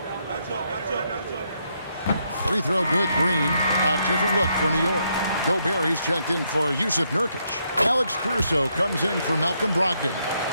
Free throw good, Green. A different look for New York. Gobert, he's checked in for Yusuf Nurkic. Alex Caruso comes in for Malcolm Brogdon.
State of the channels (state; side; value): inverted; both; correlation -0.76